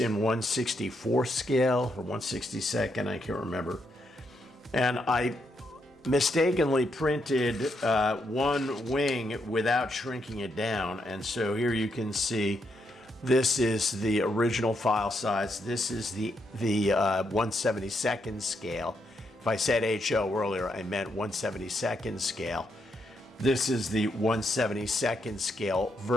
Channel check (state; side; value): normal; both; correlation 0.79